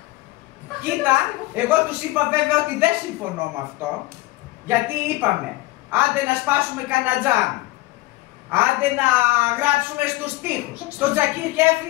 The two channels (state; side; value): quieter; right; 19.3 dB